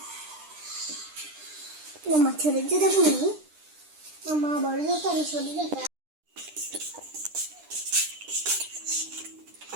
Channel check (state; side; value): late; left; 9.9 ms